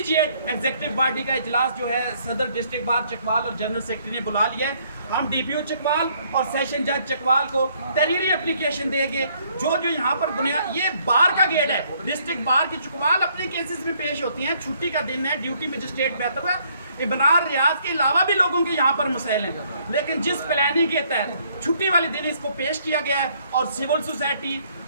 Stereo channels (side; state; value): both; inverted; correlation -0.66